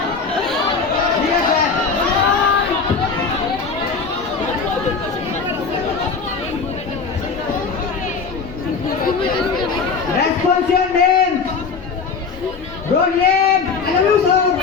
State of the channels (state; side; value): quieter; right; 5.1 dB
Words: ঠিক আছে Response your name. Your name.